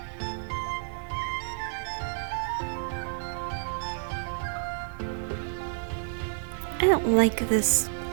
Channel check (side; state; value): left; silent; 58 dB below the other